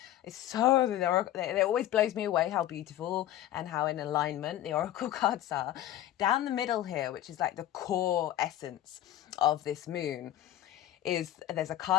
is it always blows me away how beautiful and how in alignment the oracle cards are. Down the middle here, which is like the core essence of this moon, there's a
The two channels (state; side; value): quieter; right; 13.0 dB